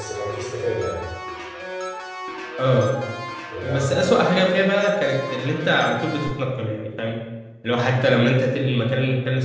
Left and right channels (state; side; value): identical; both; correlation 1.00